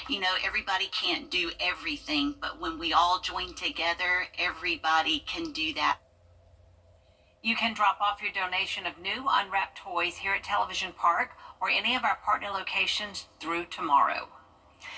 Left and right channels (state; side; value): identical; both; correlation 1.00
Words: You know, everybody can't do everything, but when we all join together, everybody can do that. You can drop off your donation of new unwrapped toys here at Television Park or any of our partner locations through tomorrow.